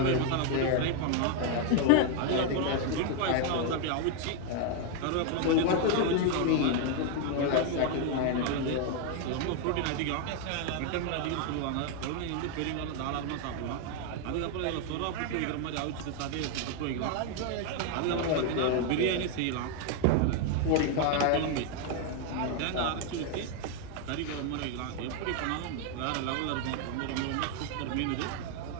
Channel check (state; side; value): different; both; correlation 0.01